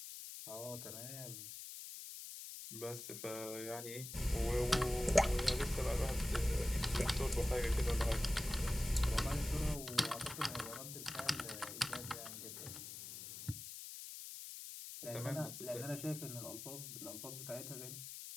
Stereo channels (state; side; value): noise; left; hiss, 9 dB below the sound